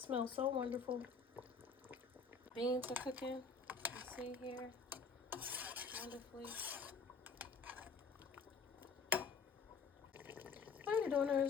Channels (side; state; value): right; quieter; 5.2 dB